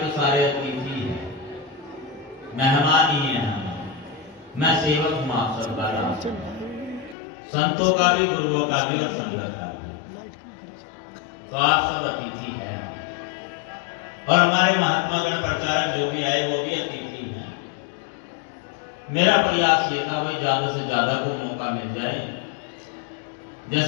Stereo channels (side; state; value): right; drops out; at 7.2 s